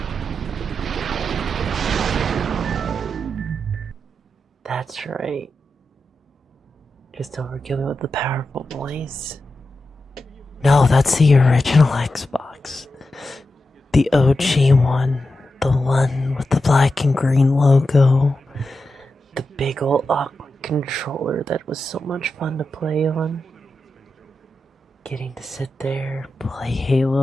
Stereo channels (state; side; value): normal; both; correlation 0.90